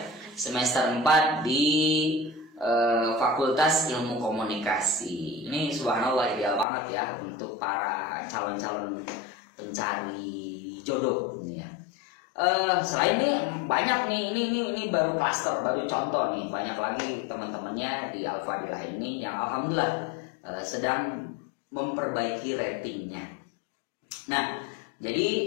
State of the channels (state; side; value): drops out; right; at 6.7 s